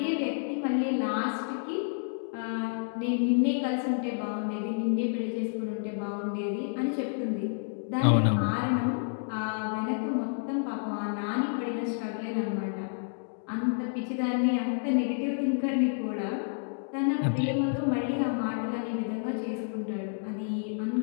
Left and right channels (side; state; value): right; silent; digital silence